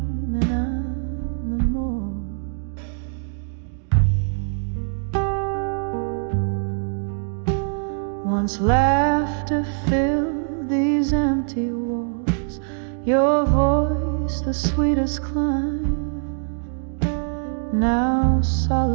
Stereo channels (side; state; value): left; silent; digital silence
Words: and I'm the more. Once laughter filled these empty walls, your voice the sweetest climb. Now